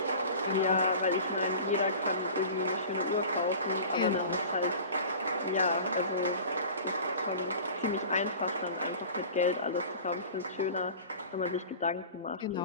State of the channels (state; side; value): inverted; both; correlation -0.39